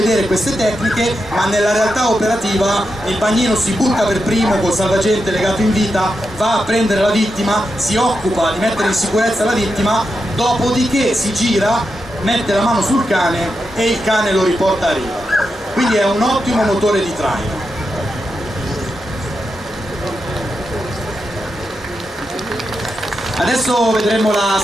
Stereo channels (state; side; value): normal; both; correlation 0.87